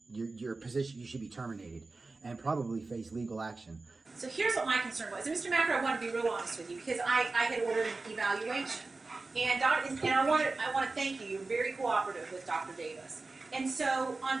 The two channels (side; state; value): left; quieter; 3.6 dB